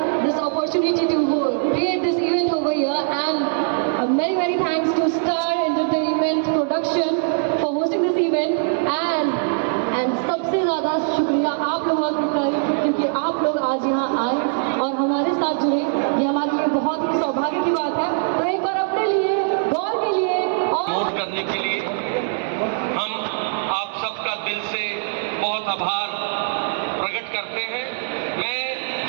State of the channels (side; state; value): left; silent; digital silence